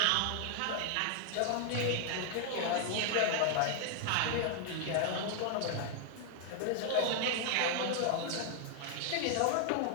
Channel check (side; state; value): both; different; correlation 0.00